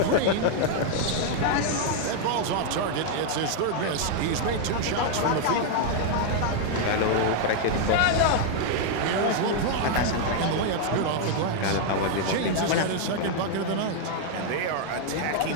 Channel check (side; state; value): both; different; correlation 0.00